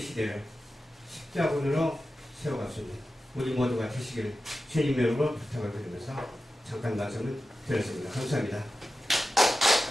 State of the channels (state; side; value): normal; both; correlation 0.93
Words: 십자군으로 세워갔습니다. 우리 모두가 되시길 주님 이름으로 부탁을 드리면서 잠깐 말씀을 드렸습니다. 감사합니다.